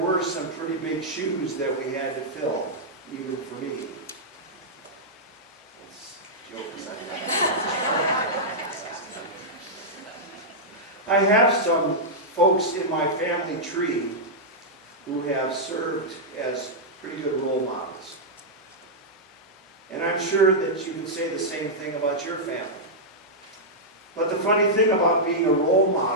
some pretty big shoes that we had to fill, even for me. I have some folks in my family tree who have served as pretty good role models. And I'm sure that you can say the same thing about your family. But the funny thing about being a role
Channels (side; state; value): both; normal; correlation -0.08